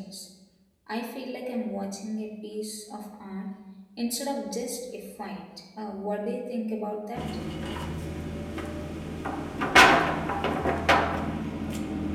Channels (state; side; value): identical; both; correlation 1.00